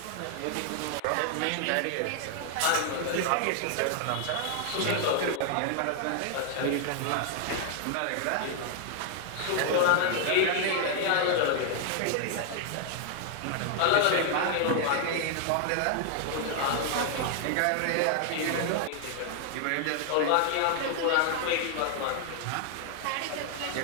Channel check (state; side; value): different; both; correlation 0.00